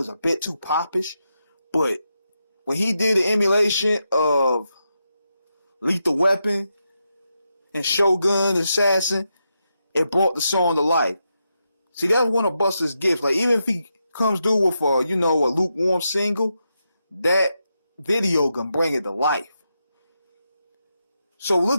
a bit too popish. But when he did the emulation of Lethal Weapon and Shogun Assassin, it brought the song to life. See, that was one of Busta's gifts. Like, even if he comes through with a lukewarm single, that video can bring it to life. So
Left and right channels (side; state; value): both; inverted; correlation -0.85